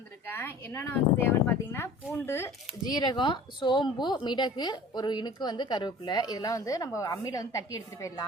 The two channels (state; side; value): normal; both; correlation 0.43